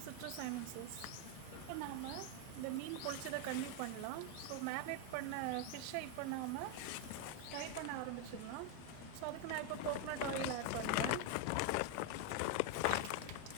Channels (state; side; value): different; both; correlation 0.01